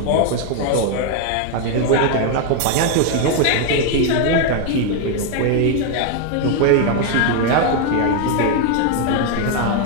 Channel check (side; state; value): both; different; correlation 0.01